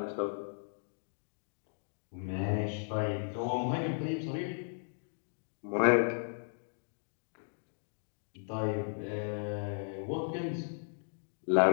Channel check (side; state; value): right; silent; digital silence